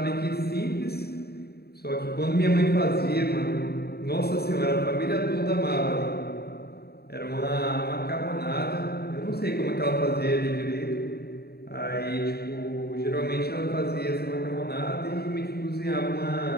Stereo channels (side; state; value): right; late; 0.46 ms